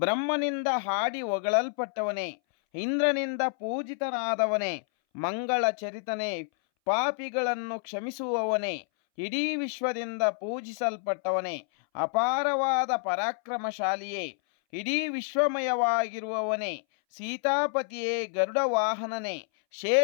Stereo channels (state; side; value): silent; right; 59 dB below the other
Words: ಹಾಡಿ ಹೊಗಳಲ್ಪಟ್ಟವನೇ, ಇಂದ್ರನಿಂದ ಪೂಜಿತನಾದವನೇ, ಮಂಗಳ ಚರಿತನೇ, ಪಾಪಿಗಳನ್ನು ಕ್ಷಮಿಸುವವನೇ, ಇಡೀ ವಿಶ್ವದಿಂದ ಪೂಜಿಸಲ್ಪಟ್ಟವನೇ, ಅಪಾರವಾದ ಪರಾಕ್ರಮಶಾಲಿಯೇ, ಇಡೀ ವಿಶ್ವಮಯವಾಗಿರುವವನೇ, ಸೀತಾಪತಿಯೇ, ಗರುಡ ವಾಹನನೇ,